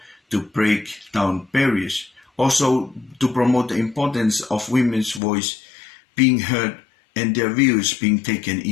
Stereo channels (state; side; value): drops out; right; at 5.2 s